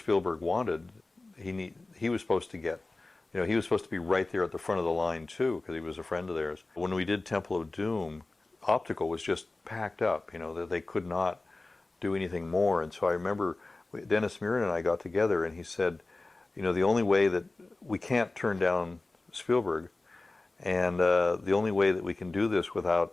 wanted, he was supposed to get. He was supposed to be right there at the front of the line too, because he was a friend of theirs. When we did Temple of Doom, optical was just packed up. That they could not do anything more. And so I remember Dennis Muren and I got together, and he said, the only way that we can't turn down Spielberg, and the only way that we can do this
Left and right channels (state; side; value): quieter; right; 3.2 dB